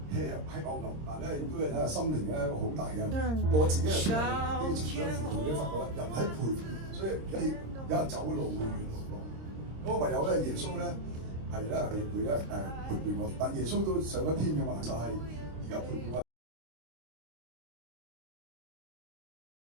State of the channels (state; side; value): late; left; 26 ms